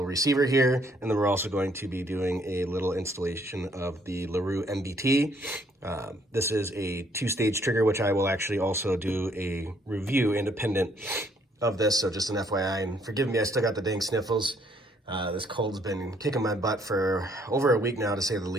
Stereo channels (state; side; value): normal; both; correlation 0.66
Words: receiver here, and then we're also going to be doing a little installation of the Larue MBT. This is a two-stage trigger, which I will actually also do a review independent of this, so just an FYI, and forgive me, I still got the dang sniffles. This cold's been kicking my butt for over a week now, to say the